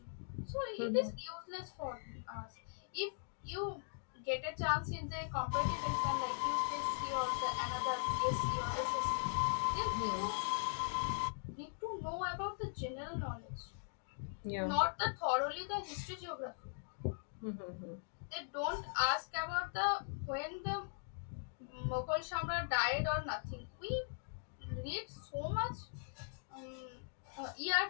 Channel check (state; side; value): silent; right; digital silence